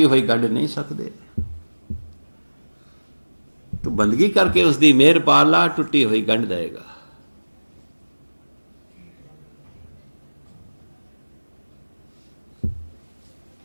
ਹੋਈ ਗੰਢ ਨਹੀਂ ਸਕਦੇ। ਤੂੰ ਬੰਦਗੀ ਕਰਕੇ ਉਸਦੀ ਮਿਹਰ ਪਾ ਲਾ, ਟੁੱਟੀ ਹੋਈ ਗੰਢ ਦੇਗਾ।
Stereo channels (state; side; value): inverted; both; correlation -1.00